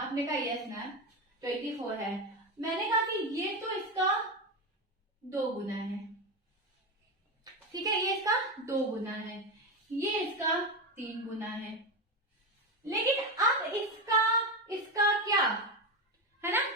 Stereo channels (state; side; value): normal; both; correlation 0.15